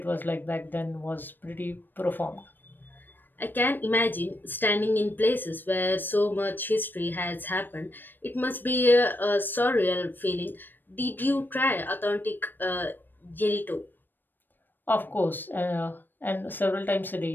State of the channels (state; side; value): late; right; 0.093 ms